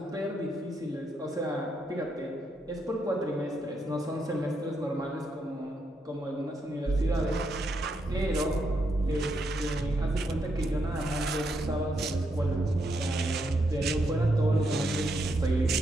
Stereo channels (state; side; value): normal; both; correlation 0.79